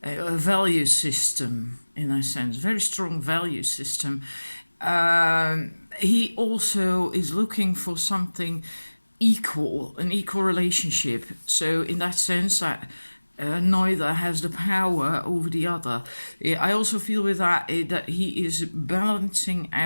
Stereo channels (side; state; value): both; inverted; correlation -1.00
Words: a value system in a sense, very strong value system. He also is looking for something an equal relationship. So in that sense, that neither has the power over the other. I also feel with that that he is balancing